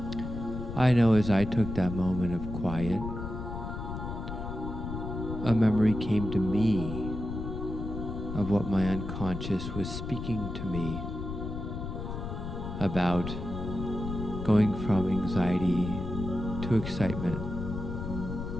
I know as I took that moment of quiet, a memory came to me of what my unconscious was speaking to me about going from anxiety to excitement.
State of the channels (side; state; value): left; noise; rumble, 6 dB below the sound